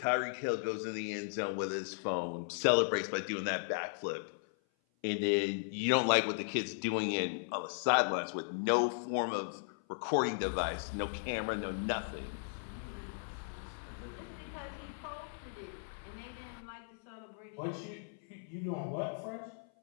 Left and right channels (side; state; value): right; silent; 53 dB below the other